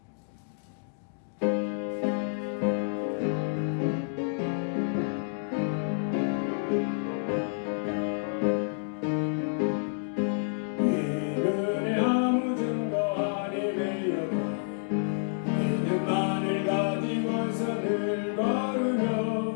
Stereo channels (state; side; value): silent; right; digital silence